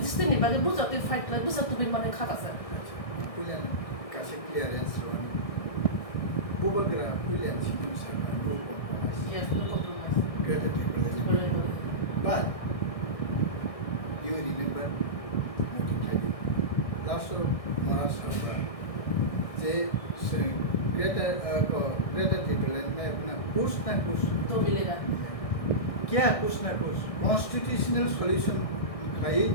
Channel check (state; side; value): late; right; 1.6 ms